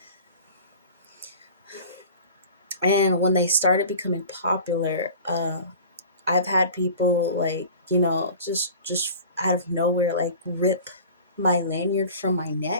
And when they started becoming popular, I've had people like, just out of nowhere, like rip my lanyard from my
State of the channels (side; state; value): both; inverted; correlation -0.41